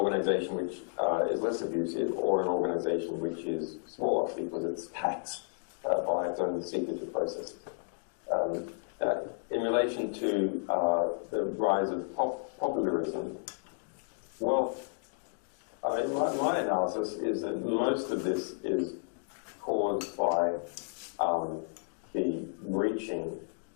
which is less abusive or an organization which is smaller because it's taxed by its own secretive processes. In relation to the rise of populism, well, my analysis is that most of this is caused by the reaching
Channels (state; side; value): silent; right; digital silence